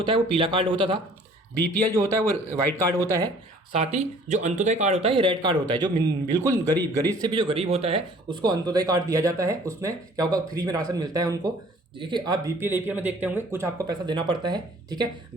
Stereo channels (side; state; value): both; normal; correlation 0.53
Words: है वो पीला कार्ड होता था, BPL जो होता है वो वाइट कार्ड होता है, साथ ही जो अंत्योदय कार्ड होता है ये रेड कार्ड होता है। जो बिल्कुल गरीब से भी जो गरीब होता है उसको अंत्योदय कार्ड दिया जाता है। उसमें क्या होगा? फ्री में राशन मिलता है उनको। देखिए, आप BPL APL में देखते होंगे कुछ आपको पैसा देना पड़ता है। ठीक है,